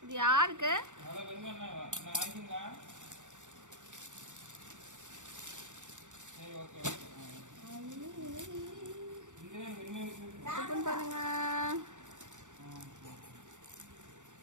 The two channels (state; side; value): late; left; 0.85 ms